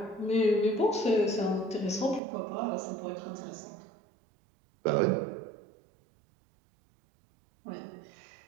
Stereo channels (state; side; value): drops out; left; at 2.2 s